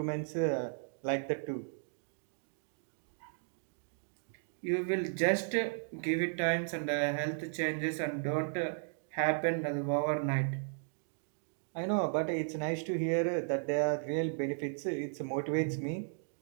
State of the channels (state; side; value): silent; left; digital silence